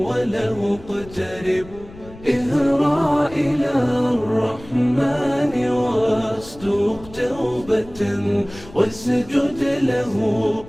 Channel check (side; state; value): left; noise; rumble, 19 dB below the sound